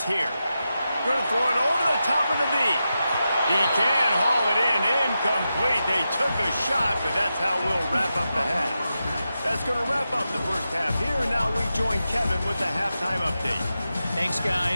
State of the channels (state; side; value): inverted; both; correlation -0.90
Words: here. Going to throw it over the top of the knee. He can haul it in. Incomplete. They took a shot, but that's how we'll wrap up the half. That's going to wrap up the first half here, and now we join Kevin with the halftime update. Thanks,